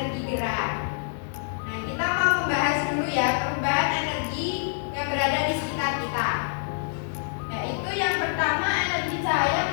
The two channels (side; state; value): right; silent; digital silence